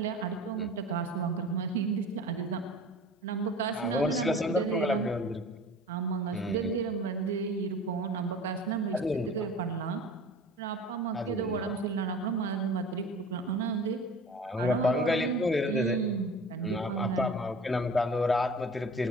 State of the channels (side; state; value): both; normal; correlation 0.40